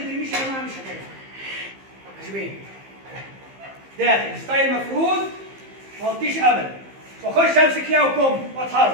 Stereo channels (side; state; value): left; late; 15 ms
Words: يا جماعه مش هتنفع. عجبين داخل ستايل مفروض ما اغطيش ابدا، واخش امسك ليها وكم